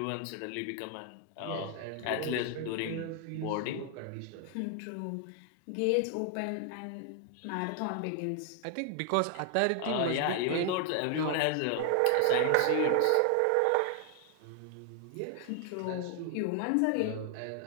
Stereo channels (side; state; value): both; different; correlation 0.00